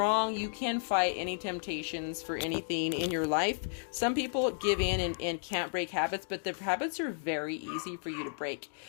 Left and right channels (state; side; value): silent; right; digital silence